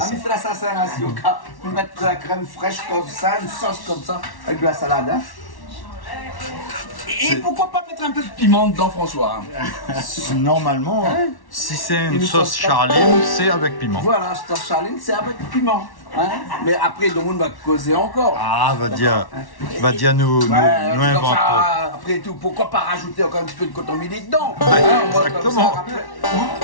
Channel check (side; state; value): right; late; 1.1 ms